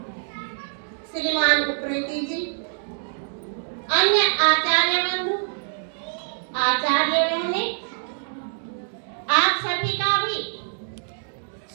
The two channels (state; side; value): silent; left; digital silence